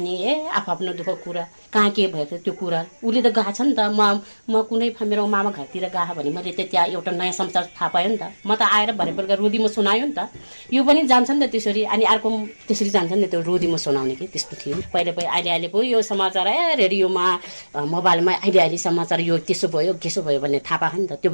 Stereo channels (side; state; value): both; inverted; correlation -1.00